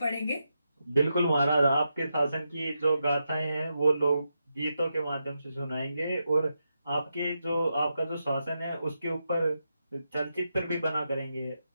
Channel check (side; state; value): both; inverted; correlation -0.86